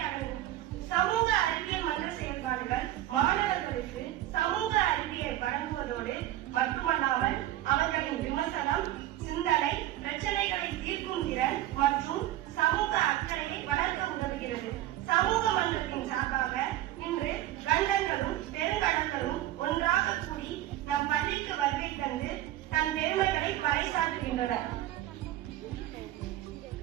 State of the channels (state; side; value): quieter; left; 14.1 dB